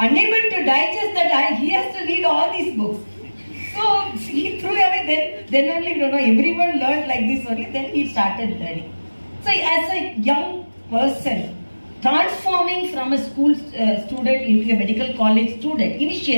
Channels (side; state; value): both; inverted; correlation -1.00